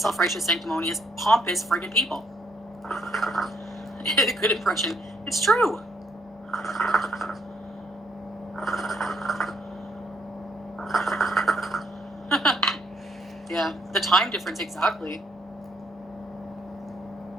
sanctimonious, pompous friggin' people. A good impression. It's true. Yeah, the time difference, exactly.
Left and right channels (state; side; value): normal; both; correlation 0.71